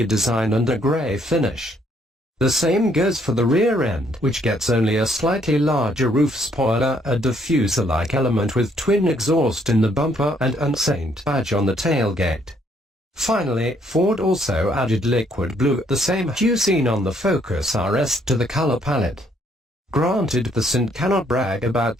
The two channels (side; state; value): both; normal; correlation 0.68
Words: design and a grey finish. The same goes for the rear end, which gets only a slightly larger roof spoiler, a diffuser-like element with twin exhaust in the bumper and an Saint badge on the tailgate. Finally, Ford also added liquid blue, the same hue seen on the Focus RS, to the color palette. Granted, the Cint cannot brag about